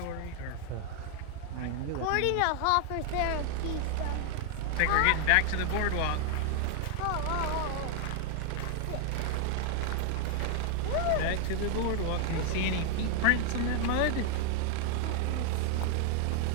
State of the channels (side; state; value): both; different; correlation 0.00